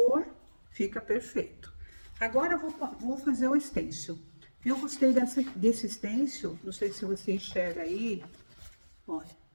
fica perfeito. Agora eu vou fazer o stencil. Eu gostei desse stencil, não sei se você enxerga aí. Olha,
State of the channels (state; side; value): inverted; both; correlation -1.00